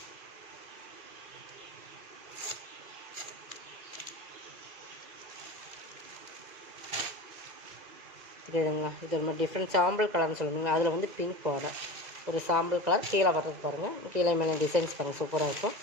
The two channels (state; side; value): late; left; 2.0 ms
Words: இதுங்களா, இது ஒரு மாதிரி டிஃப்ரெண்ட் சாம்பிள் கலர்னு சொல்லுவீங்க. அதில் வந்து பிங்க் பார்டர், ஒரு சாம்பிள் கலர். கீழே வர்றது பாருங்கள். கீழே மேலே டிசைன்ஸ் பாருங்கள், சூப்பராக இருக்கும்.